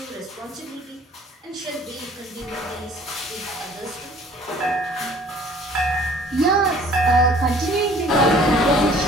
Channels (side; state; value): both; normal; correlation 0.53